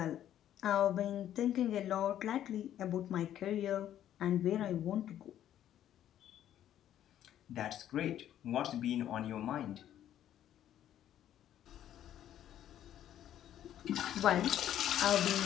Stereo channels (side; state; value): right; quieter; 11.3 dB